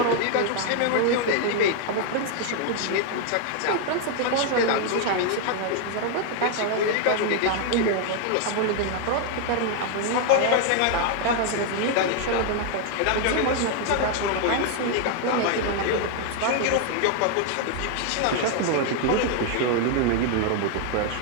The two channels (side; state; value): both; different; correlation 0.00